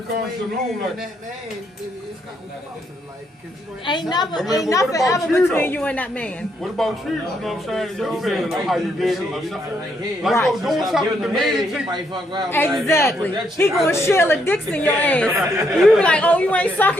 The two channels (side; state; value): both; normal; correlation 0.75